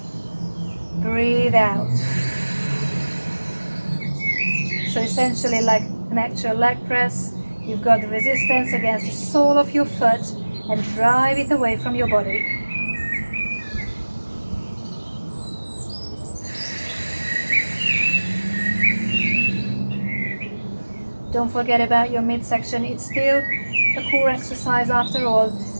Breathe out. So essentially like an actual leg press, you've got the resistance against the sole of your foot and drive it away from your body. Don't forget about your midsection. It's still a core exercise after all,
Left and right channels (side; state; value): both; inverted; correlation -1.00